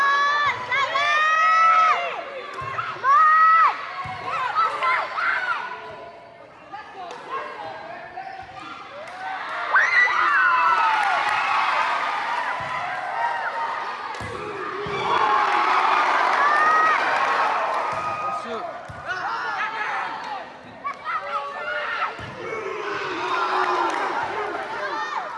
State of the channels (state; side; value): identical; both; correlation 1.00